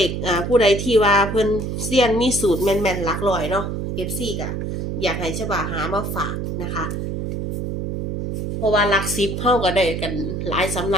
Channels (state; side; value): noise; right; hum, 3 dB below the sound